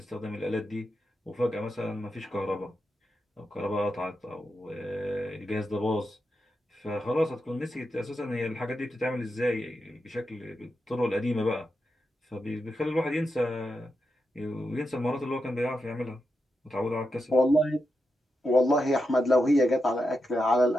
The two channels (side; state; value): both; normal; correlation 0.87